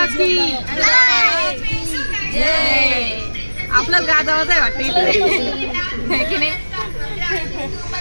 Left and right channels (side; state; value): both; inverted; correlation -1.00